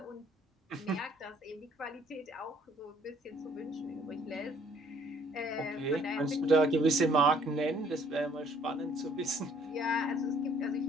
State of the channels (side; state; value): both; normal; correlation 0.61